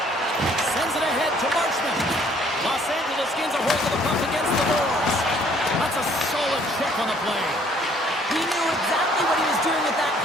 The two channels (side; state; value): both; normal; correlation 0.61